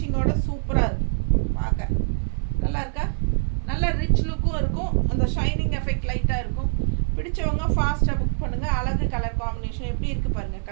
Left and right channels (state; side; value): silent; left; 62 dB below the other